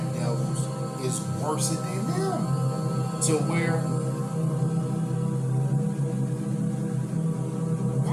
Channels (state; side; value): identical; both; correlation 1.00